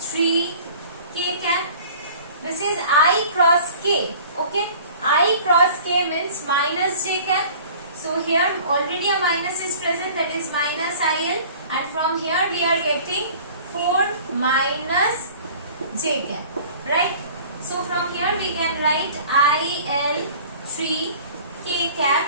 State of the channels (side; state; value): both; inverted; correlation -0.46